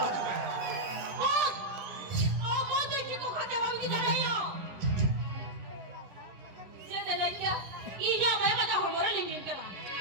아주 왜 Apa tu kita kata kami kita ada. Jangan lagi kau. Ini apa yang kita hormon lingkin kara.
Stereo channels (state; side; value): late; left; 10 ms